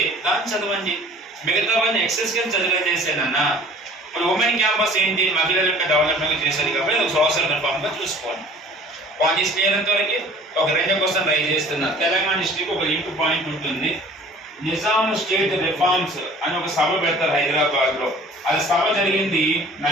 దాన్ని చదవండి. మిగతావన్నీ ఎక్సెస్ కింద చదివేసేనన్నా. ఇప్పుడు ఉమెన్ క్యాంపస్ ఏంటి? మహిళల యొక్క డెవలప్మెంట్ చేసేది కాబట్టి అది సోషల్ రిఫార్మ్గా చూసుకోండి. పాయింట్స్ క్లియర్ వరకు ఒక 2 క్వశ్చన్ రైజ్ చేస్తున్నా. తెలంగాణ హిస్టరీకి ఒక లింక్ పాయింట్ ఉంటుంది. నిజాం స్టేట్ రిఫార్మ్స్ అని ఒక సభ పెడతారు హైదరాబాద్ లో. అది సభ జరిగింది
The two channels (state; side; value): normal; both; correlation 0.48